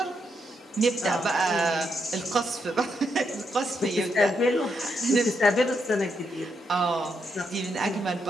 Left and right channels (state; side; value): normal; both; correlation 0.80